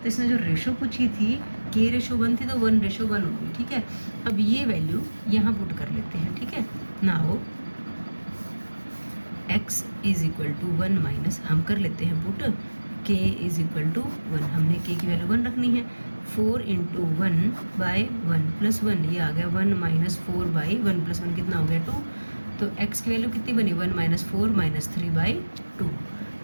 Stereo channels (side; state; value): both; inverted; correlation -1.00